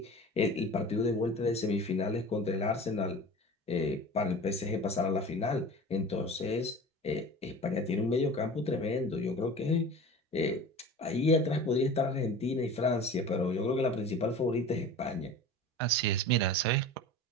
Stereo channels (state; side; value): normal; both; correlation 0.37